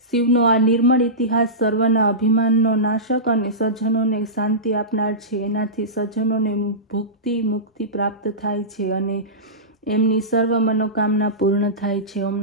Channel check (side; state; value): both; normal; correlation -0.19